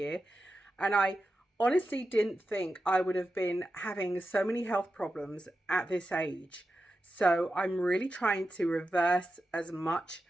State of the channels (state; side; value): normal; both; correlation 0.91